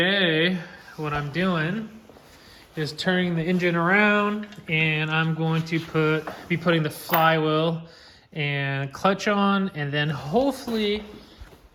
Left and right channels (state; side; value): identical; both; correlation 1.00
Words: what I'm doing is turning the engine around, and I'm going to be putting the flywheel and clutch on, and then hopefully,